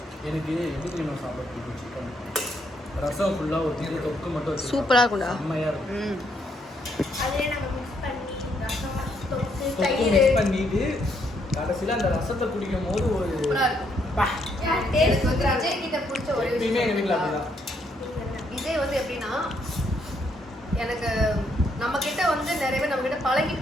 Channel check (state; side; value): normal; both; correlation 0.73